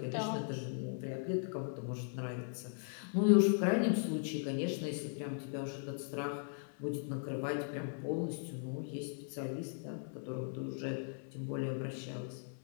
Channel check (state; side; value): silent; right; 52 dB below the other